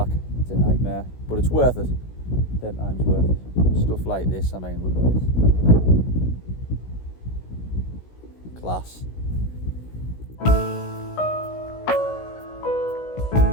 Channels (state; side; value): late; right; 16 ms